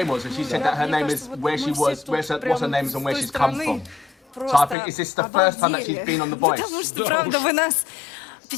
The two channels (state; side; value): drops out; right; at 4.8 s